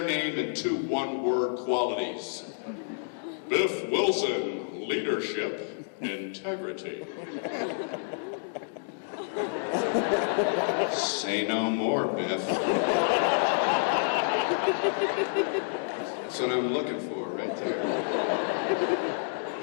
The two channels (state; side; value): silent; right; digital silence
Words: name and 2 one-word qualities. Biff Wilson, leadership, integrity. Say no more, Biff. That's what I'm looking for right there.